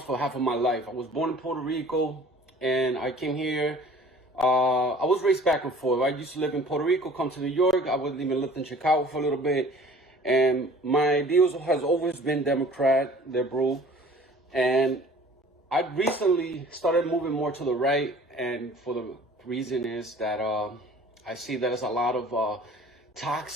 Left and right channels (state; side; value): normal; both; correlation 0.49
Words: for half of my life. I was born in Puerto Rico, and I came here. I was raised back and forth. I used to live in Puerto Rico, come to New York. I was even lived in Chicago for a little bit. And my ideals has always been Democrat, liberal. And I recently started moving more to the right. And for the reason is that I see that there's a lot of